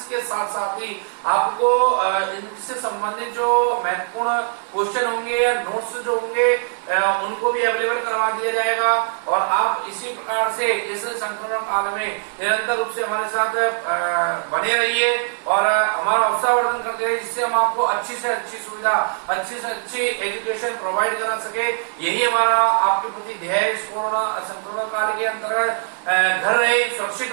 के साथ साथ ही आपको इनसे संबंधित जो महत्वपूर्ण क्वेश्चन होंगे या नोट्स जो होंगे उनको भी अवेलेबल करवा दिया जाएगा। और आप इसी प्रकार से इस संक्रमण काल में निरंतर रूप से हमारे साथ बने रहिए और हमारा उत्साहवर्धन करते रहिए, जिससे हम आपको अच्छी से अच्छी सुविधा, अच्छी से अच्छी एजुकेशन प्रोवाइड करा सके। यही हमारा आपके प्रति ध्येय इस कोरोना संक्रमण काल के अंतर्गत। घर रहे, सुरक्षित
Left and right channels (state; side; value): silent; left; 64 dB below the other